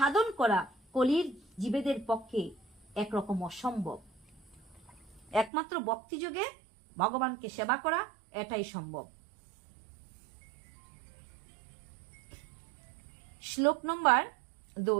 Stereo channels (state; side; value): drops out; left; at 5.5 s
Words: করা কলির জীবেদের পক্ষে একরকম অসম্ভব। একমাত্র ভক্তি যোগে ভগবানকে সেবা করা এটাই সম্ভব। শ্লোক নম্বর